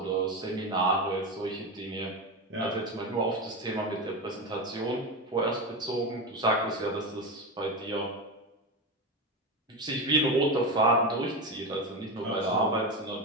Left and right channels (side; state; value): both; normal; correlation 0.18